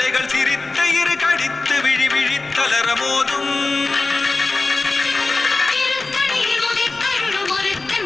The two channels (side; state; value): right; quieter; 3.5 dB